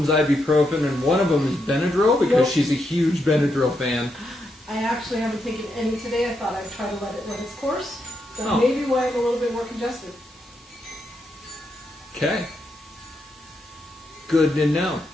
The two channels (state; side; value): normal; both; correlation 0.81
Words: ibuprofen and one of them is Benadryl because she's a huge Benadryl fan. I actually haven't taken any today. I thought I'd try to let it run its course. That Oh. may be why I'm a little bit more congested. Okay. Good to know.